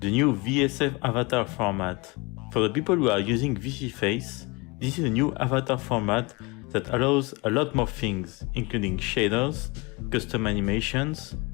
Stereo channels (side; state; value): right; quieter; 26.6 dB